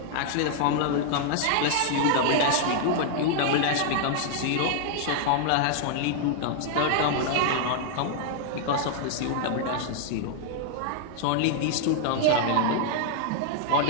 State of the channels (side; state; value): both; different; correlation -0.01